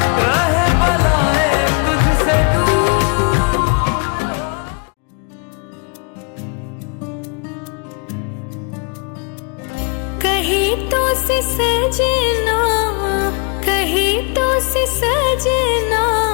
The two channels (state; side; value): quieter; right; 35.2 dB